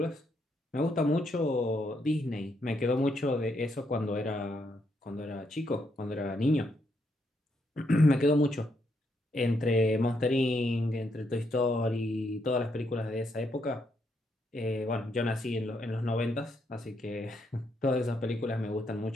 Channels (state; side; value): normal; both; correlation 0.77